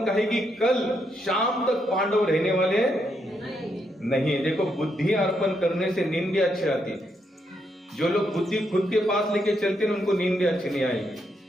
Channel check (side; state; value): both; normal; correlation 0.79